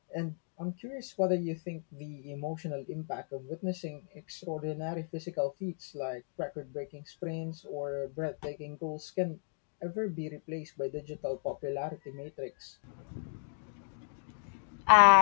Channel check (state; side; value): silent; right; digital silence